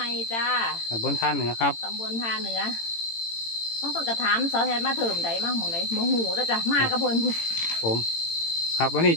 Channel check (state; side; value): late; right; 18 ms